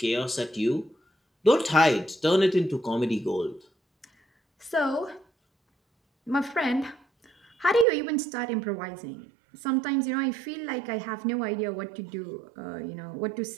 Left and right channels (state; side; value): drops out; left; at 7.9 s